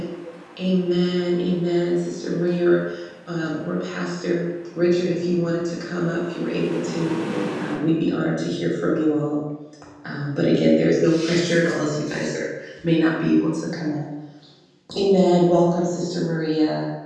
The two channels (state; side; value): identical; both; correlation 1.00